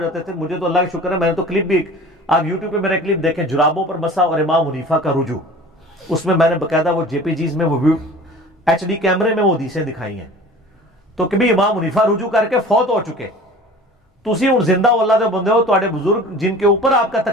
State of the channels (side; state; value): both; normal; correlation 0.42